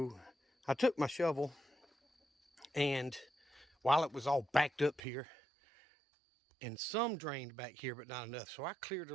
I took my shovel, and while it was all backed up here, and some drained back here, but not enough, so I cleared a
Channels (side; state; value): left; drops out; at 5.0 s